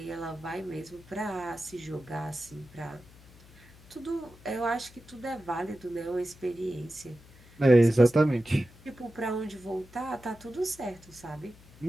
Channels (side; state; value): left; noise; hum, 23 dB below the sound